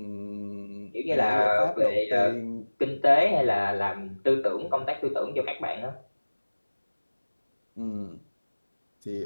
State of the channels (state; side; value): inverted; both; correlation -1.00